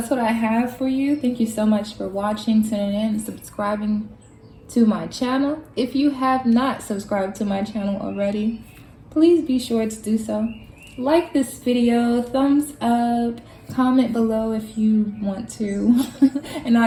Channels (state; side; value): identical; both; correlation 1.00